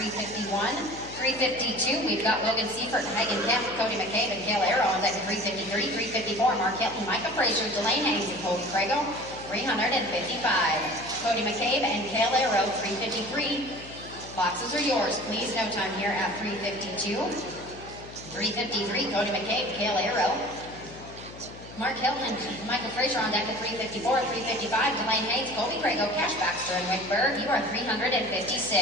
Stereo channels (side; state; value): left; noise; hum, 16 dB below the sound